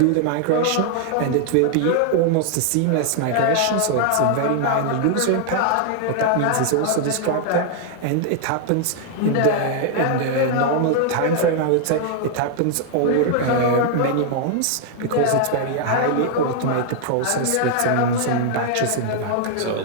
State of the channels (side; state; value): both; different; correlation 0.00